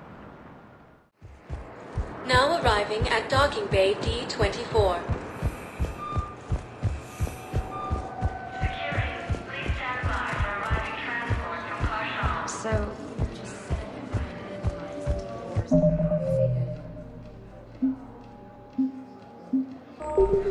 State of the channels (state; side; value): identical; both; correlation 1.00